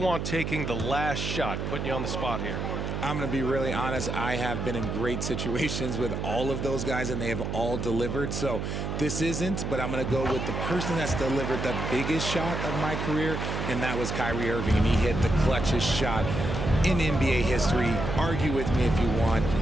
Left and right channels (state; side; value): noise; right; hum, 3 dB below the sound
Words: taking the last shot? Putting you on the spot here. I'm going to be really honest. I have been in great situations with all of those guys, and they have all delivered. So this isn't, but I'm going to go with the person that's delivered the biggest shot of my career, and that was Kyrie Irving, and he hit the clutchest shot in NBA history. Argue with me if you want.